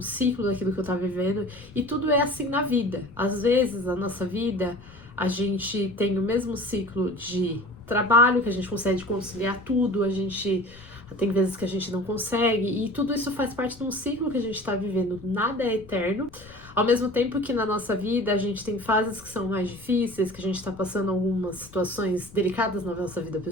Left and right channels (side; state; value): left; noise; rumble, 21 dB below the sound